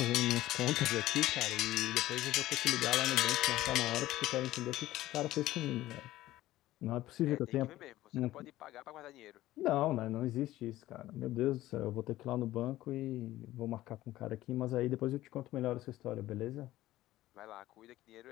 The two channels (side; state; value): right; quieter; 15.6 dB